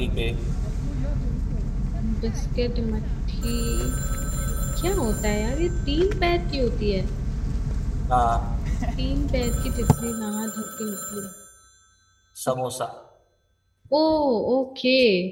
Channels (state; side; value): identical; both; correlation 1.00